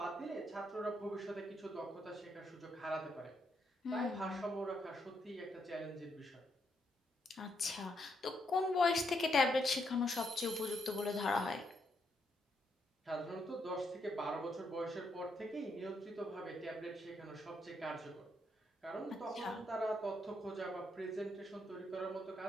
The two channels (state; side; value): normal; both; correlation 0.77